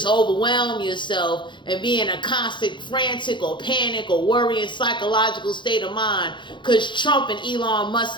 overwhelm yourself and be in a constant frantic or panic or worrying psychological state of mind because Trump and Elon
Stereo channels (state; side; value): late; right; 0.23 ms